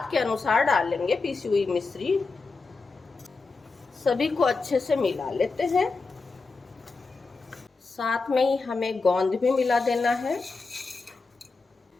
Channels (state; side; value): quieter; right; 4.1 dB